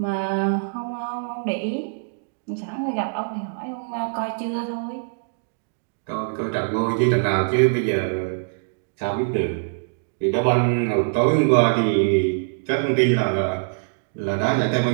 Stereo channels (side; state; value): left; silent; digital silence